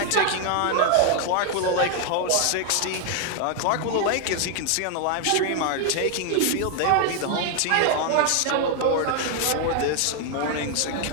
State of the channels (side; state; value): both; different; correlation 0.00